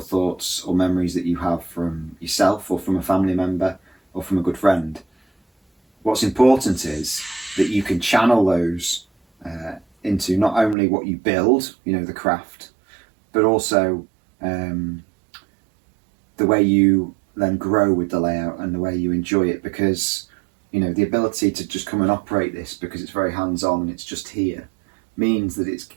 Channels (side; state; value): left; drops out; at 10.8 s